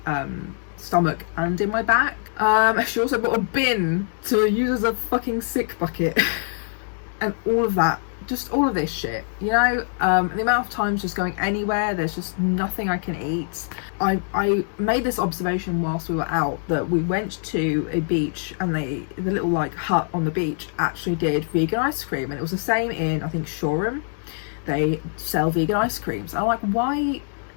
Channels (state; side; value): silent; right; digital silence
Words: stomach and in my back. She also bought a bin to use as a fucking sick bucket and all of that, just all of this shit, you know. The amount of times just going anywhere, there's just nothing I can eat. I made this observation whilst we were out, that we went to a beach and the little like hut on the beach actually did vegan ice cream, and it was the same in, I think, Shoreham. They sell vegan ice creams. I'm like, why